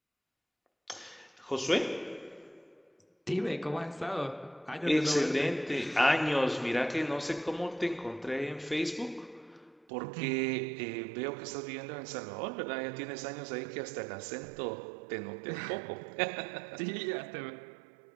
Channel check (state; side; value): drops out; left; at 9.9 s